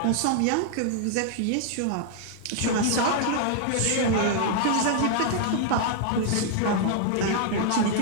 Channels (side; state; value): both; different; correlation -0.01